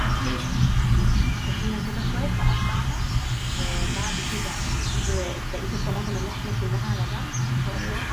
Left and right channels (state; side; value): identical; both; correlation 1.00